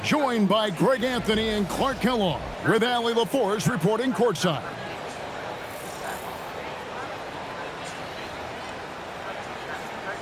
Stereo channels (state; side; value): identical; both; correlation 1.00